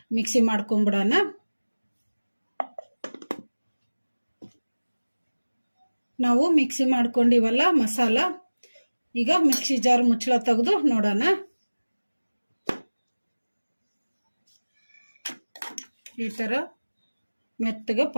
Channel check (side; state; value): both; inverted; correlation -1.00